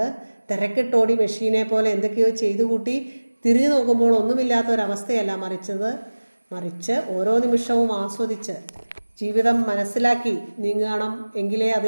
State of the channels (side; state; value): both; inverted; correlation -1.00